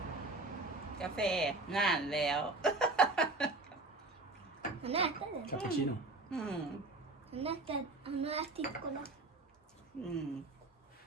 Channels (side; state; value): left; quieter; 3.1 dB